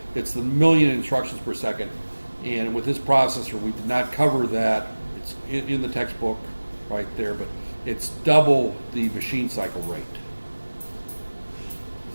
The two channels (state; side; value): inverted; both; correlation -1.00